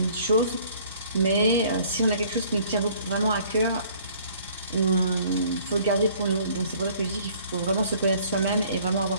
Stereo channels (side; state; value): both; inverted; correlation -0.56